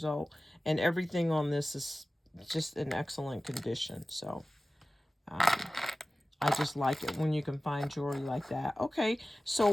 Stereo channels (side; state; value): both; normal; correlation 0.96